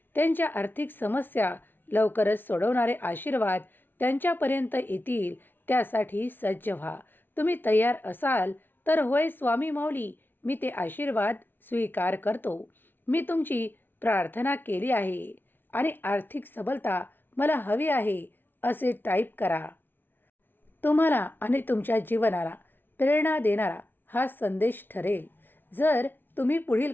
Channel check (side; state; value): right; late; 0.098 ms